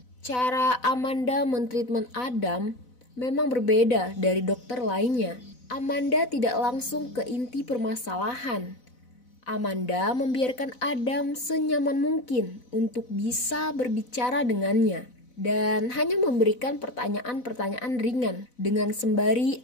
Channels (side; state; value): right; late; 4.0 ms